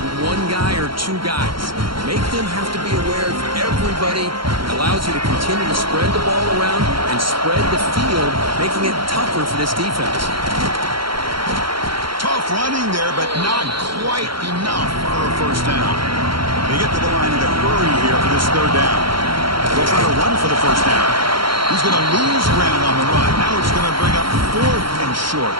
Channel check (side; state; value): left; late; 0.73 ms